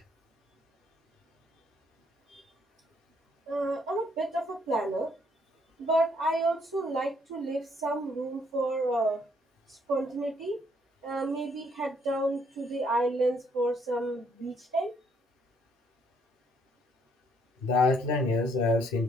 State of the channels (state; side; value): normal; both; correlation 0.68